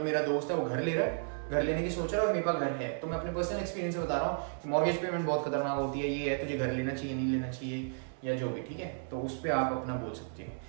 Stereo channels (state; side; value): silent; left; digital silence